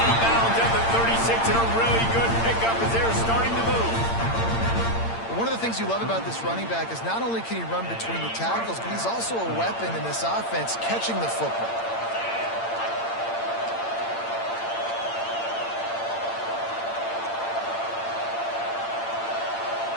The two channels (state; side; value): late; right; 8.8 ms